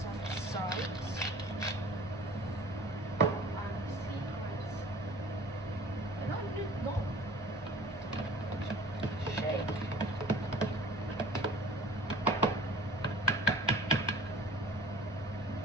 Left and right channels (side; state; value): both; normal; correlation 0.46